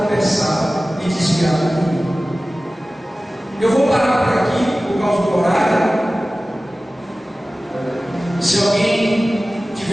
e desviar do caminho. Eu vou parar por aqui por causa do horário. Se alguém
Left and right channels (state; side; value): normal; both; correlation 0.97